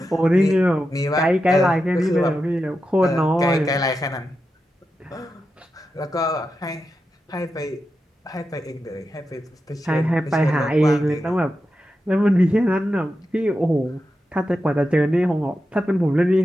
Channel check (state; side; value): normal; both; correlation 0.89